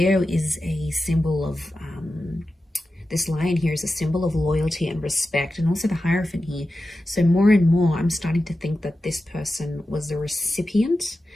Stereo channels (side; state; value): both; normal; correlation 0.92